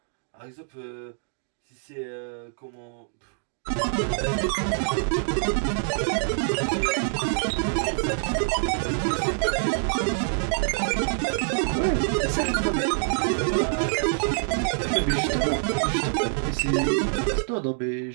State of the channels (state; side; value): silent; left; digital silence